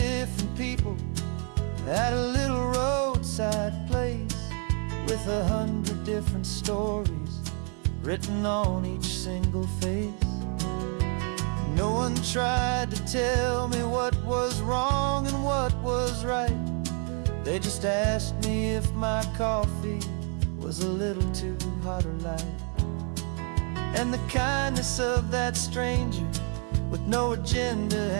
people at a little roadside place, with 100 different stories written on each single face. No one tried to tell me what was wrong and what was right. They just asked me if my coffee was a little too hot or light. And the kindness of that stranger, with no agenda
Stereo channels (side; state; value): left; quieter; 39.0 dB